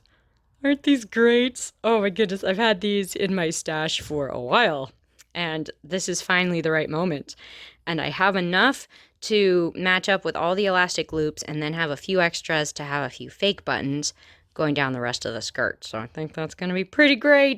Aren't these great? Oh my goodness, I've had these in my stash for a while, and this is finally the right moment. And I have enough to match up with all the elastic loops and then have a few extras to have a few fake buttons going down the rest of the skirt. So I think that's going to be pretty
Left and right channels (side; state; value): both; identical; correlation 1.00